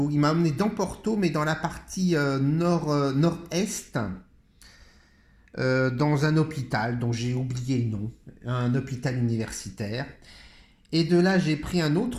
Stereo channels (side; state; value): both; identical; correlation 1.00